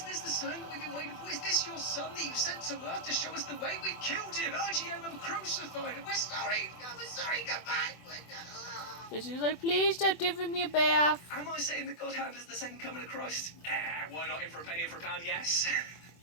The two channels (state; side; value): late; right; 24 ms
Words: this the sign that we've been waiting for? Is this your son that you sent to Earth to show us the way? We killed him! IGM and crucified him! We're sorry! We're sorry! Come back! Bitsy's like, please stop giving me a bath. Am I saying that God Hand is the second coming of Christ? Why not in for a penny, in for a pound? Yes.